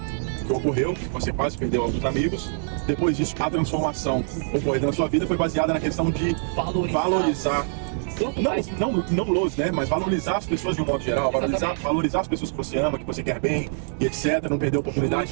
que ocorreu, que você quase perdeu alguns amigos, depois disso a transformação ocorrida na sua vida foi baseada na questão de valorizar. Não los, né? Mas valorizar as pessoas de um modo geral, valorizar as pessoas que você ama, que você quer bem, e etc. Não perder a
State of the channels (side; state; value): left; silent; digital silence